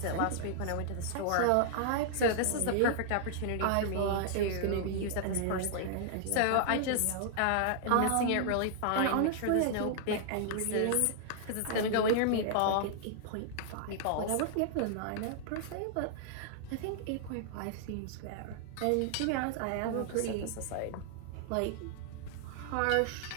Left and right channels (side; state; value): both; different; correlation -0.01